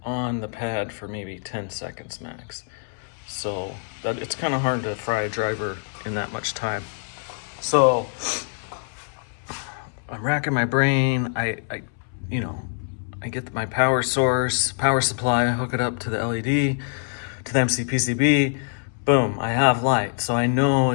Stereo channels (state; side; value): silent; right; 62 dB below the other